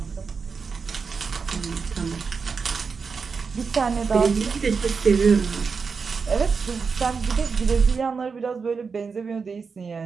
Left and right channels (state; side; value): quieter; left; 5.3 dB